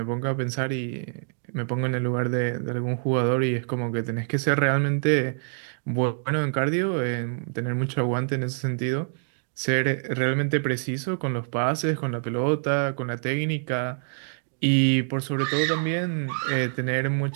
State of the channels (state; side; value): silent; left; digital silence